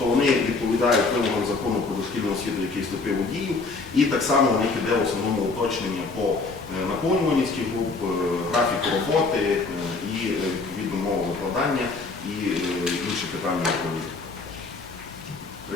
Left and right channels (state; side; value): quieter; right; 3.9 dB